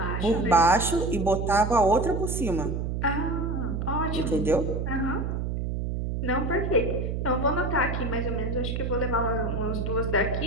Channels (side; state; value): right; noise; hum, 2 dB below the sound